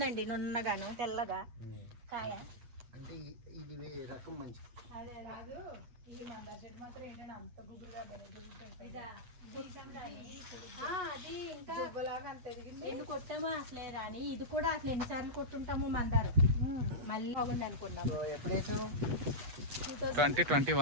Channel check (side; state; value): left; late; 8.2 ms